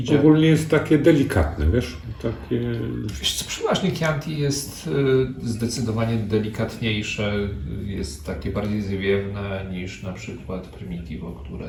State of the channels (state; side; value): identical; both; correlation 1.00